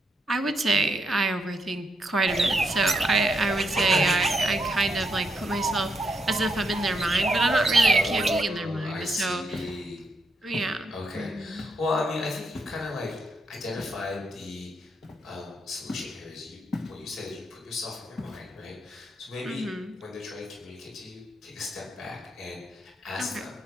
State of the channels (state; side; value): normal; both; correlation 0.80